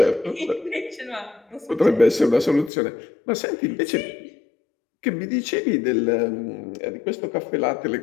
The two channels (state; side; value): drops out; right; at 2.7 s